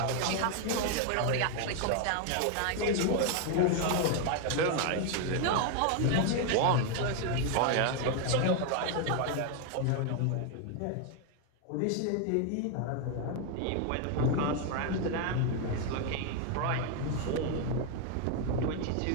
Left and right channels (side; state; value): both; different; correlation 0.00